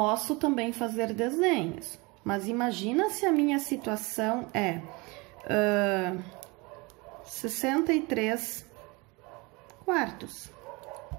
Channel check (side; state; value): left; quieter; 26.5 dB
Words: também fazer desenhos, mas imagina se a minha situação é 63 quartos.